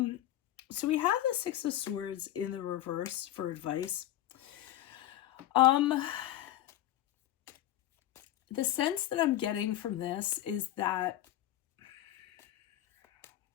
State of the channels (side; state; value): right; quieter; 13.4 dB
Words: so we have the Six of Swords in the reverse for advice. The sense that I'm getting from this is that